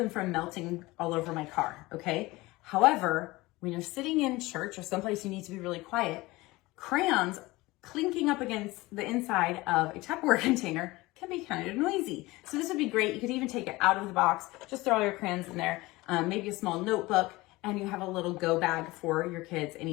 from melting all over my car, okay? However, when you're sitting in church or someplace you need to be really quiet, crayons clinking up against the inside of a Tupperware container can be kind of noisy. So this would be great. You could even take it out of the box, just throw all your crayons in there, maybe a small notebook, and you have a little go bag for your kids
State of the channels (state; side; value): quieter; right; 20.7 dB